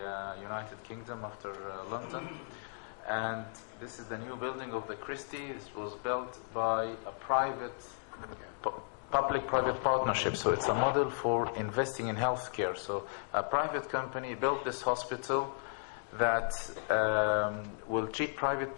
United Kingdom after London. And this is the new building of the Christie. This was built by a public-private partnership. So it's a model for investing in healthcare. So a private company built this hospital that will treat private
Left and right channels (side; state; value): right; silent; digital silence